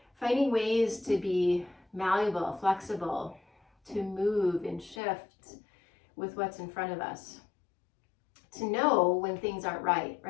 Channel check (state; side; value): drops out; right; at 5.0 s